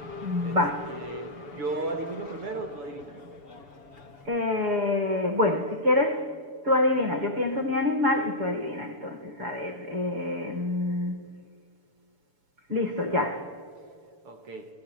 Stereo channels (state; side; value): late; left; 7.0 ms